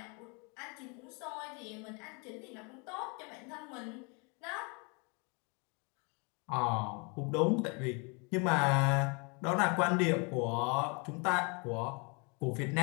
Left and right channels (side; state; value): right; quieter; 32.9 dB